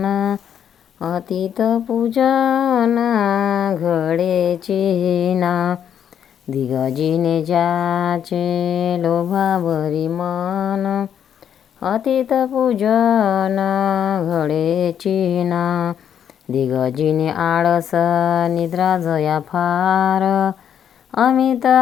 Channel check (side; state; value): right; quieter; 8.9 dB